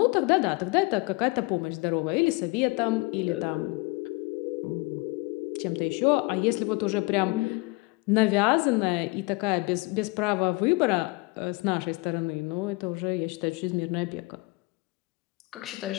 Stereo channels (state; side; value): quieter; right; 25.5 dB